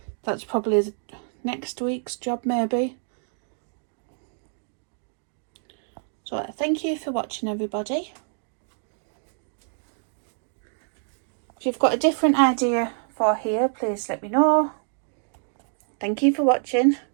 That's probably next week's job maybe. So thank you for watching, everybody. If you've got a different idea for here, please let me know. Thank you for watching.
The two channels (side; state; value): left; silent; digital silence